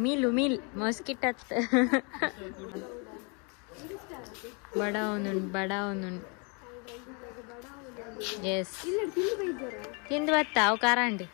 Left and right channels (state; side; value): quieter; right; 34.3 dB